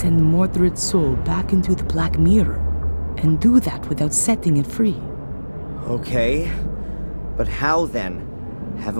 Mordred's soul back into the Black Mirror, and do that without setting it free. Okay, but how then?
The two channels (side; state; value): both; inverted; correlation -1.00